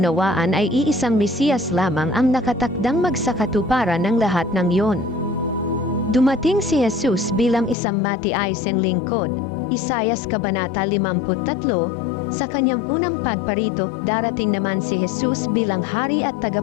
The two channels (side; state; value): right; drops out; at 7.8 s